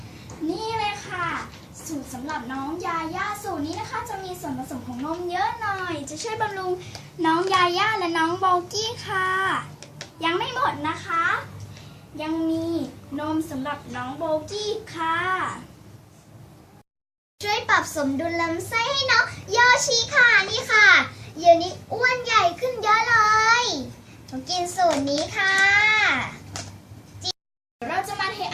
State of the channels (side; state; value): both; identical; correlation 1.00